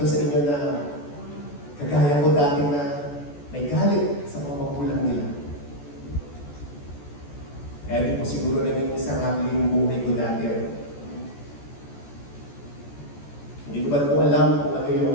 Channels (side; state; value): right; late; 14 ms